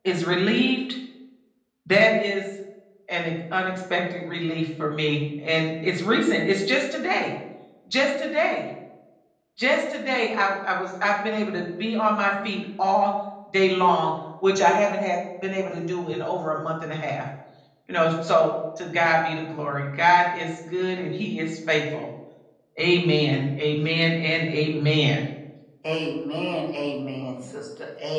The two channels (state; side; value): identical; both; correlation 1.00